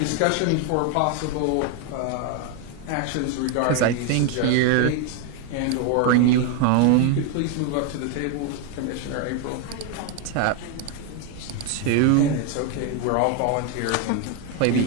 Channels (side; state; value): both; different; correlation 0.01